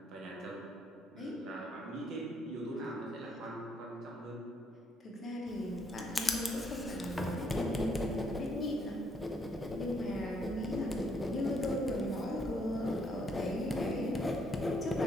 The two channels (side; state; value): both; normal; correlation 0.71